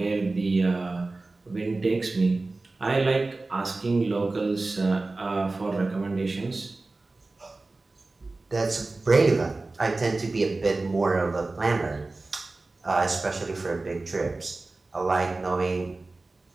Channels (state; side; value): quieter; left; 3.3 dB